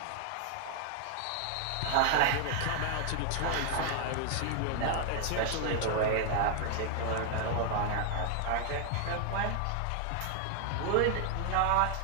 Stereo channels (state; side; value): different; both; correlation 0.00